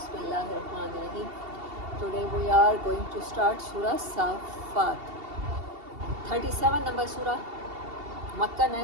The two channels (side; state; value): left; late; 2.7 ms